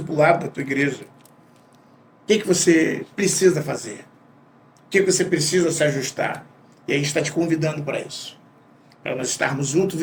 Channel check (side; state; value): both; identical; correlation 1.00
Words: da tua igreja? O que você precisa fazer? O que você precisa se ajustar? E a gente está te convidando para isso. Para nós estarmos juntos